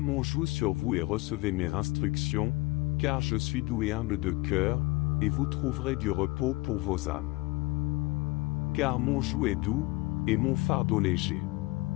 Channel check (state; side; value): quieter; right; 21.9 dB